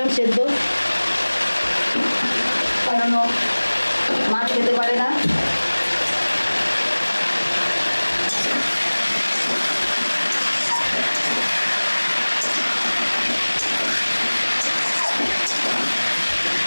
সেদ্ধ, কারণ মাছ খেতে পারে না।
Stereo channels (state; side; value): inverted; both; correlation -1.00